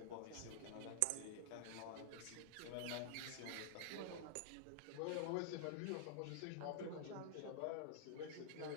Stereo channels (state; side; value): different; both; correlation -0.01